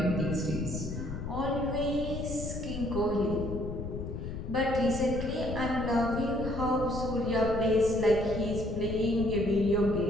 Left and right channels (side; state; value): left; noise; rumble, 6 dB below the sound